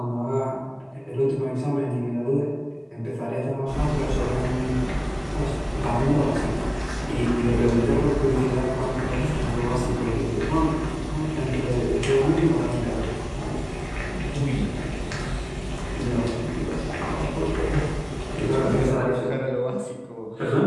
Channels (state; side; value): identical; both; correlation 1.00